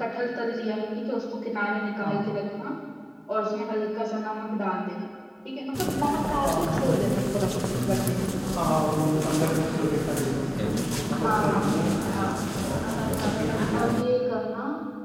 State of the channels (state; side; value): identical; both; correlation 1.00